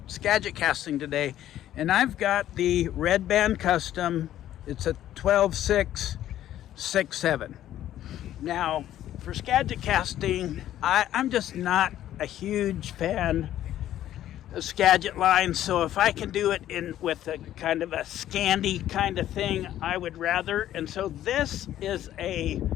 Skagit casting today, and I've got the Red Band Custom. It's a 12/6 6/7. Now, for Skagit casting, I'm just not a huge fan of Skagit lines, so if I can do it in with a kind of a Scandi kind of thing, I would rather. And so this is a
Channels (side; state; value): right; quieter; 12.3 dB